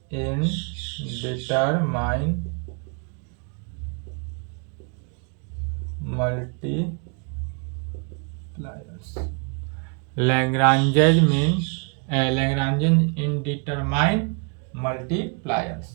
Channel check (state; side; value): quieter; left; 35.8 dB